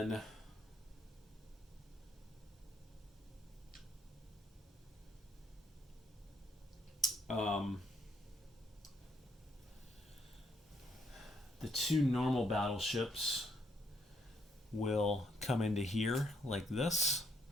the two normal battleships will come into here like this,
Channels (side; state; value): both; normal; correlation 0.72